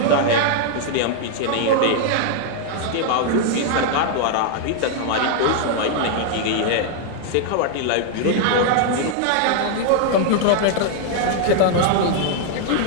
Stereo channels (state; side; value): different; both; correlation 0.00